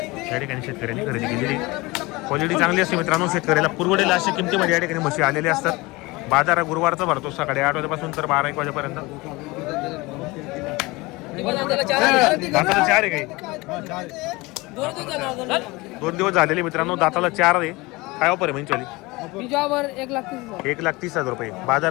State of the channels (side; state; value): right; quieter; 22.9 dB